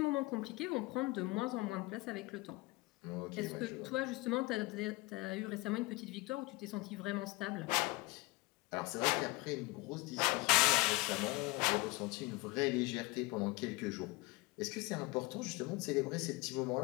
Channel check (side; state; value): right; quieter; 23.3 dB